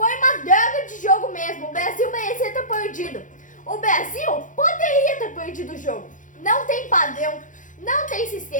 uma droga de jogo mesmo. O Brasil merecia ter perdido. O Brasil poderia ter perdido o jogo. Não tem padrão, não tem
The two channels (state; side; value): late; right; 0.37 ms